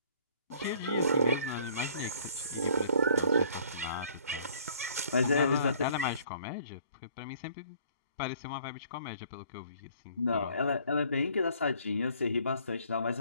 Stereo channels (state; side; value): inverted; both; correlation -0.59